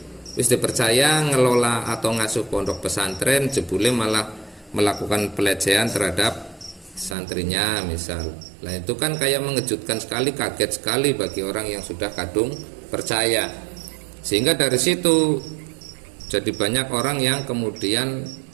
Wis dipercaya ngelola atau ngasuh pondok pesantren, jebule malah melakukan pelecehan terhadap santrinya misal. Nah itu kan kayak mengejutkan sekali, kaget sekali bagi orang yang sudah kadung percaya. Sehingga dari situ jadi banyak orang yang kemudian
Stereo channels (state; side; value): drops out; left; at 7.2 s